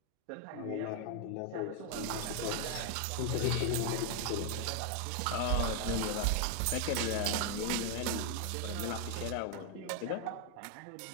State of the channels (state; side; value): different; both; correlation 0.01